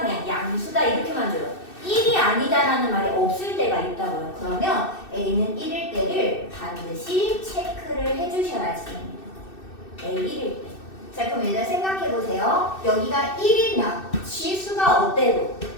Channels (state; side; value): late; right; 2.6 ms